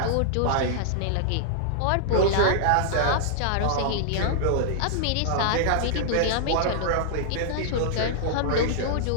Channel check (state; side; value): different; both; correlation -0.01